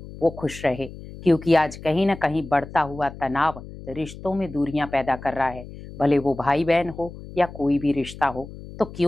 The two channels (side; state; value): left; noise; hum, 14 dB below the sound